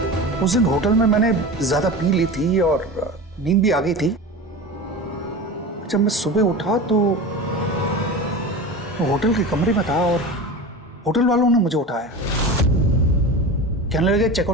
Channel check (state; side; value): normal; both; correlation 0.30